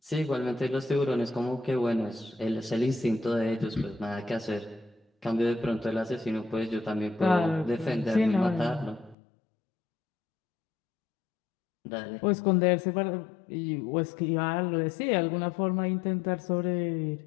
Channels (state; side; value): drops out; right; at 9.2 s